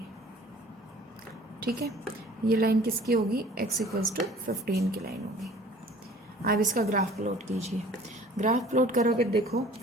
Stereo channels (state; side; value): normal; both; correlation 0.49